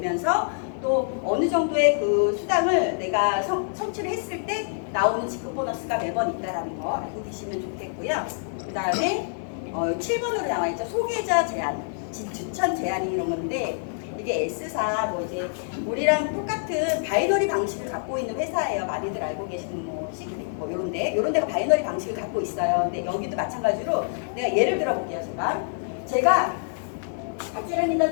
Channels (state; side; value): silent; right; digital silence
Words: 또 어느 정도의 그 수당을 내가 성취를 했을 때 나오는 직급 보너스가 매번 있다라는 거 알고 계시면 좋겠고요. 그 다음에 7번으로 나와 있죠. 소개자 제한, 추천 제한이 이런 건데 이게 S사 뭐 이제 우리랑 똑같은 바이너리 방식을 갖고 있는 회사예요. 많이들 알고 계시는 뭐 시크릿 뭐 이런 데가 바이너리 방식을 갖고 있어요. 근데 여기도 마찬가지로 내가 예를 들어 볼게요. 제가 박재란